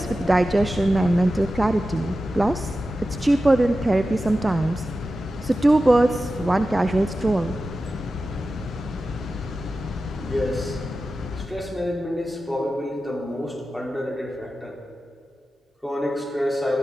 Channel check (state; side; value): normal; both; correlation 0.93